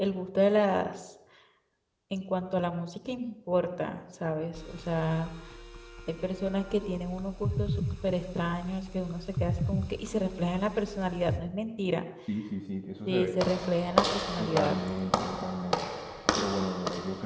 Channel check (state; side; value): identical; both; correlation 1.00